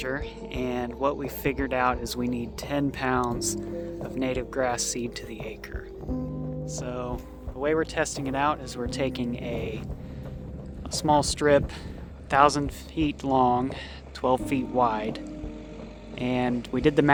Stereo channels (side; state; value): both; identical; correlation 1.00